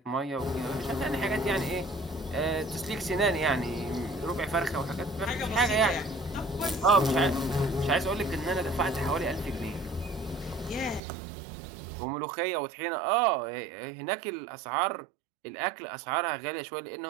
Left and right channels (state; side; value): drops out; left; at 11.0 s